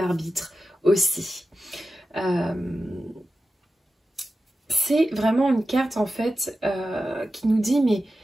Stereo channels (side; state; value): both; normal; correlation 0.93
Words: arbitre aussi. C'est vraiment une carte en fait qui nous dit mais